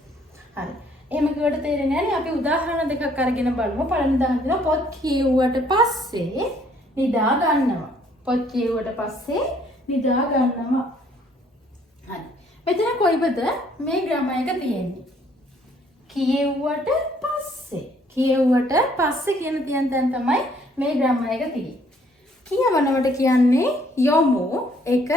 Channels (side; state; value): both; normal; correlation 0.63